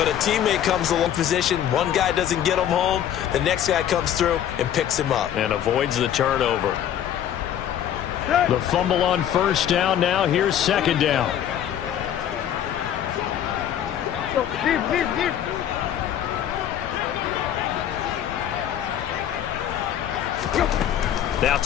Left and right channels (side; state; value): right; quieter; 10.3 dB